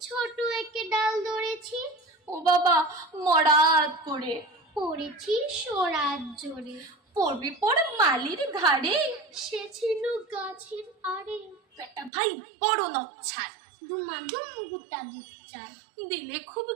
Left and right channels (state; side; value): drops out; left; at 12.1 s